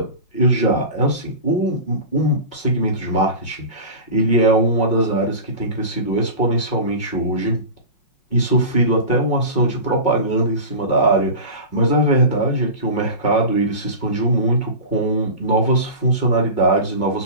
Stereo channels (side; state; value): right; late; 5.5 ms